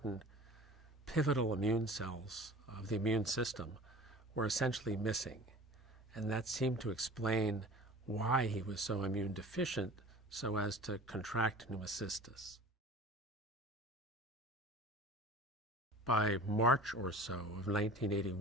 pivotal immune cells of the immune system, were essentially missing. And that seemed to explain why he was so immune deficient so as to contract pneumocystis. By March or so of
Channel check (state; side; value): normal; both; correlation 0.41